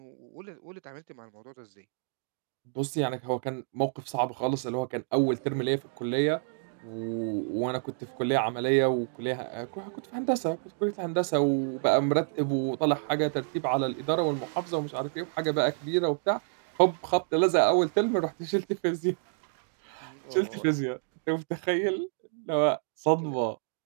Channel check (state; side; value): silent; left; digital silence